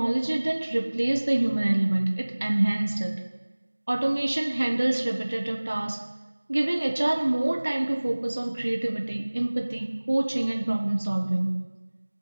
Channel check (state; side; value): inverted; both; correlation -1.00